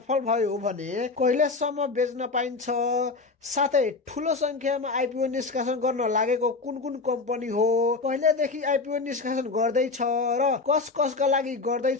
भयो भने कहिलेसम्म बेच्न पाइन्छ, साथै ठूलो संख्यामा आइपिओ निष्कासन गर्न लागेको कुन कुन कम्पनी हो, कहिलेदेखि आइपिओ निष्कासन गर्दैछ र कसका लागि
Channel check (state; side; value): quieter; right; 4.0 dB